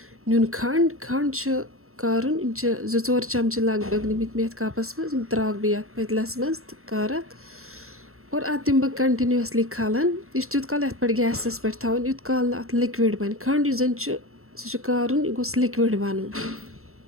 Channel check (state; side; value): late; left; 0.63 ms